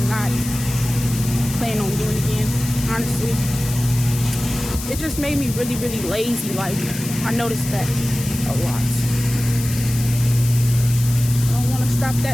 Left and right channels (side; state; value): left; noise; hiss, 9 dB below the sound